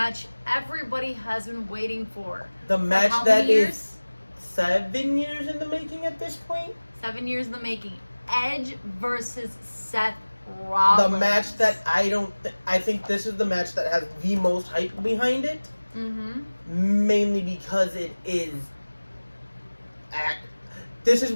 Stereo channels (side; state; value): both; inverted; correlation -1.00